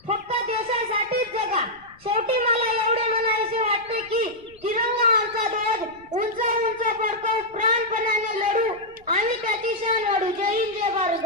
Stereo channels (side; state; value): left; noise; rumble, 28 dB below the sound